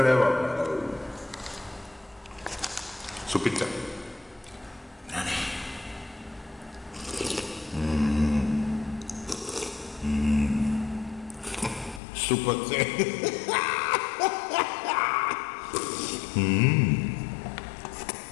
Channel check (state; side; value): drops out; right; at 12.0 s